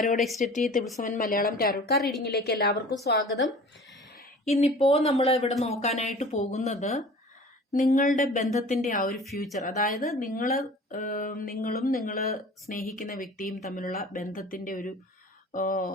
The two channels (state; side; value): normal; both; correlation 0.43